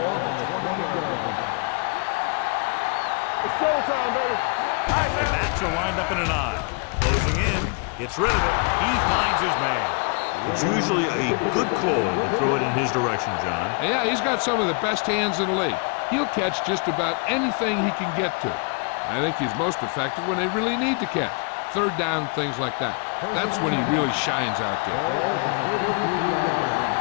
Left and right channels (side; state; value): right; quieter; 35.1 dB